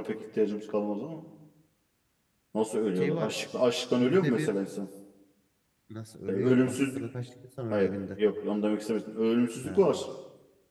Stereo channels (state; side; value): identical; both; correlation 1.00